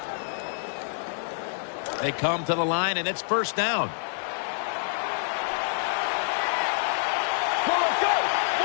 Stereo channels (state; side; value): silent; right; digital silence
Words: They come to the line, and it's first down.